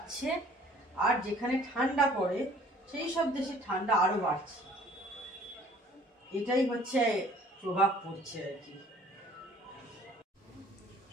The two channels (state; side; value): normal; both; correlation 0.54